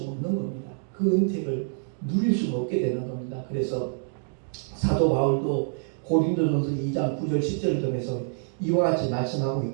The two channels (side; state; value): left; silent; digital silence